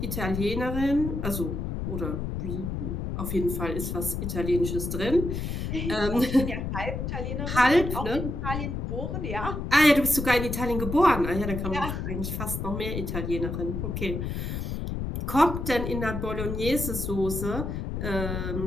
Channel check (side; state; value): left; noise; rumble, 3 dB below the sound